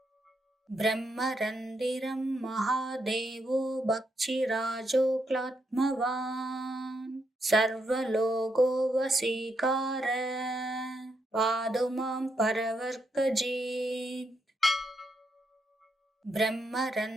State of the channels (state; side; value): normal; both; correlation 0.80